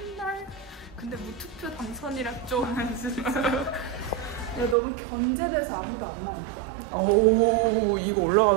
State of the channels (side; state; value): left; drops out; at 4.8 s